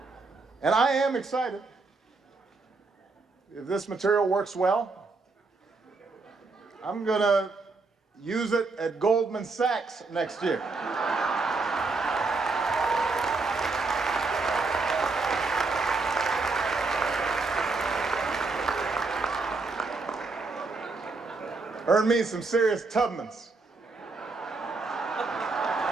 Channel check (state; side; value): quieter; left; 3.8 dB